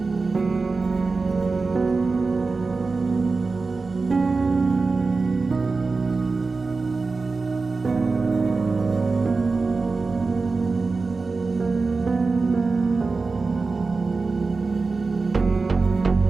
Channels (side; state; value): left; quieter; 4.1 dB